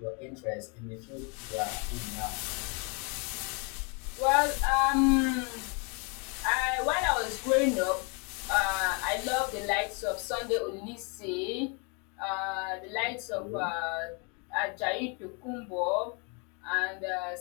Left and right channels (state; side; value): quieter; right; 34.0 dB